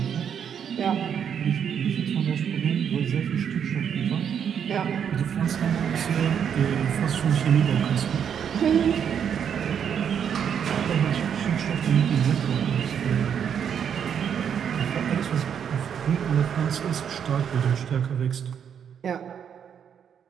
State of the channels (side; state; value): left; quieter; 8.1 dB